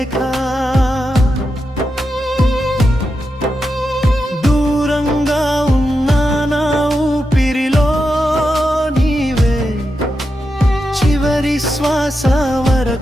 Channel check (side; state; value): both; normal; correlation 0.88